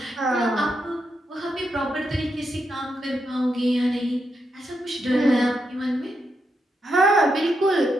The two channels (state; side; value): normal; both; correlation 0.83